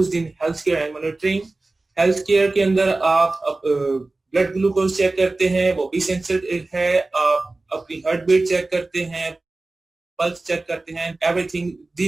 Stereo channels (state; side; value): quieter; left; 3.2 dB